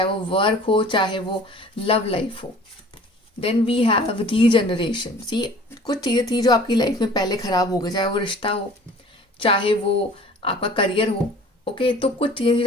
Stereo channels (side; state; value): both; normal; correlation 0.48